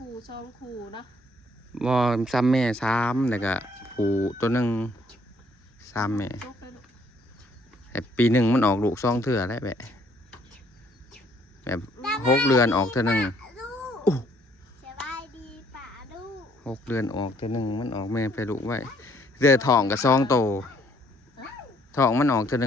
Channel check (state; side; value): normal; both; correlation 0.65